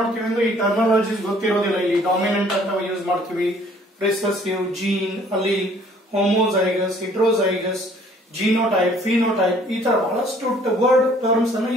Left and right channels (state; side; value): normal; both; correlation 0.57